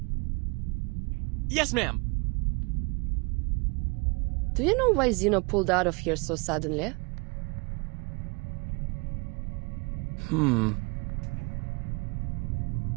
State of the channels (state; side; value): quieter; left; 30.1 dB